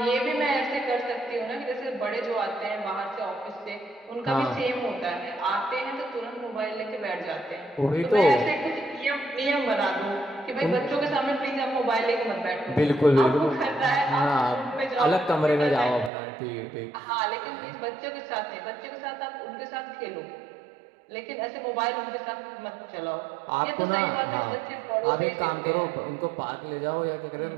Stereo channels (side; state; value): left; drops out; at 16.1 s